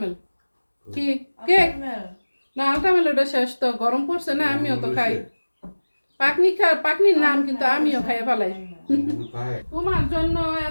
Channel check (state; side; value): inverted; both; correlation -1.00